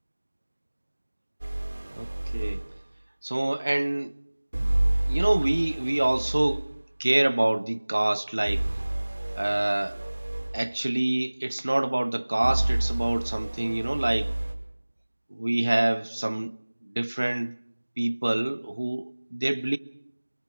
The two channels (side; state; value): both; inverted; correlation -1.00